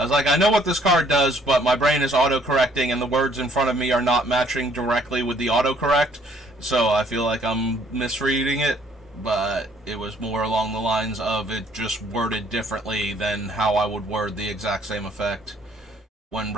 was like, I know what this card does, but my brain is auto-correcting and the words in front of me are not matching directly with the autocorrect, so I feel like I'm misreading it, but it was more along the lines of it just worded differently than how I would word the exact same effect when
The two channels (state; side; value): normal; both; correlation 0.63